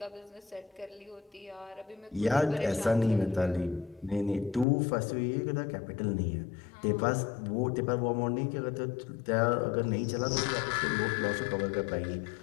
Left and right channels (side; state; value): right; drops out; at 4.7 s